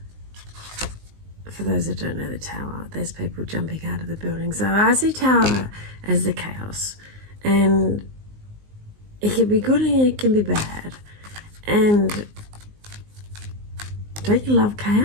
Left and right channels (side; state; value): left; late; 19 ms